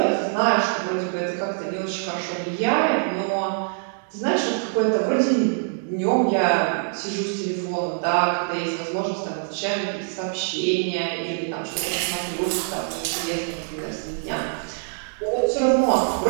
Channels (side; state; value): left; silent; 62 dB below the other